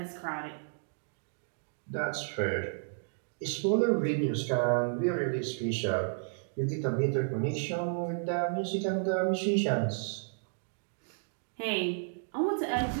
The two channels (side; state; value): left; silent; digital silence